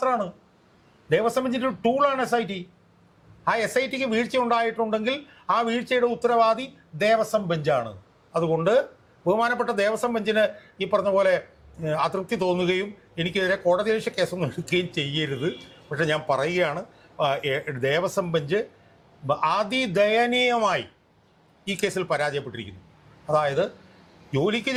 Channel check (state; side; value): identical; both; correlation 1.00